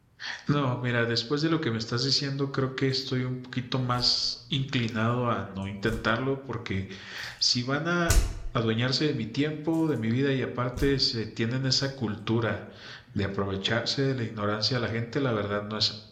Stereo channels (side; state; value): both; identical; correlation 1.00